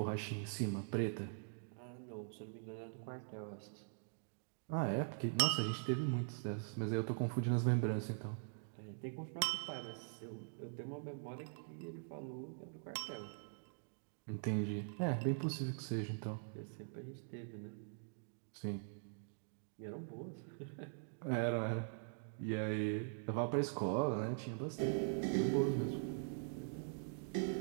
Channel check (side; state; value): left; silent; digital silence